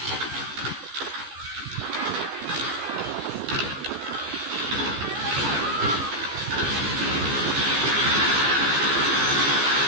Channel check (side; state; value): left; late; 15 ms